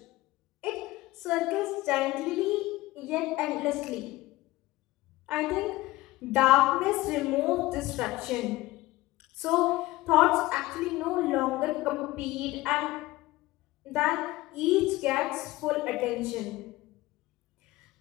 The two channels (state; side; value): quieter; right; 18.7 dB